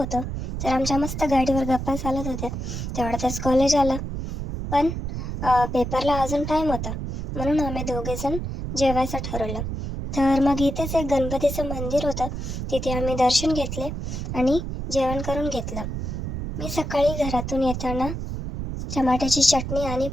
तर आमच्या मस्त गाडीवर गप्पा चालत होत्या. तेवढ्यातच कॉलेज आलं. पण पेपरला अजून टाईम होता, म्हणून आम्ही दोघेजण जेवायचं ठरवलं. तर मग इथेच एक गणपतीचं मंदिर होतं, तिथे आम्ही दर्शन घेतले आणि जेवण करून घेतलं. मी सकाळी घरातून येताना टमाट्याची चटणी आणि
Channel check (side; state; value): right; noise; rumble, 5 dB below the sound